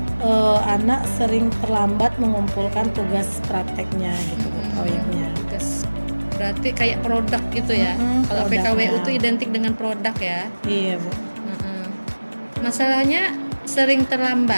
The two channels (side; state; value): both; inverted; correlation -1.00